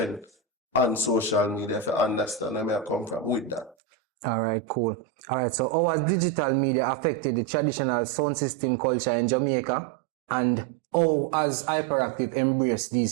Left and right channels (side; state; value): left; drops out; at 3.8 s